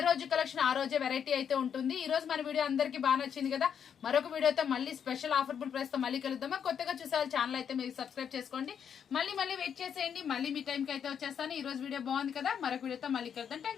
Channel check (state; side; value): quieter; right; 7.9 dB